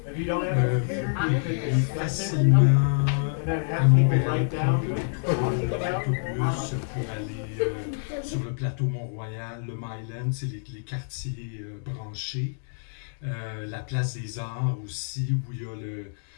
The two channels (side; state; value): right; silent; digital silence